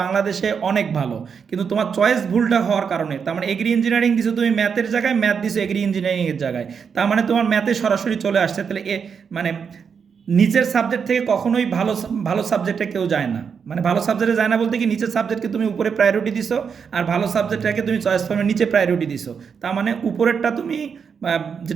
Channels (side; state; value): left; quieter; 6.5 dB